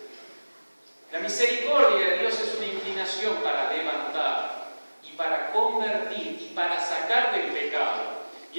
La misericordia de Dios es una inclinación para levantar y para convertir y para sacar del pecado.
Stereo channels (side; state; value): both; inverted; correlation -1.00